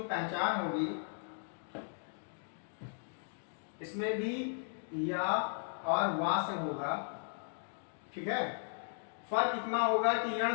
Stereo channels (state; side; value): silent; right; digital silence